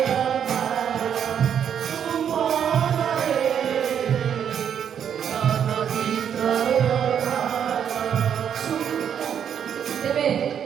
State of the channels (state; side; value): quieter; left; 8.6 dB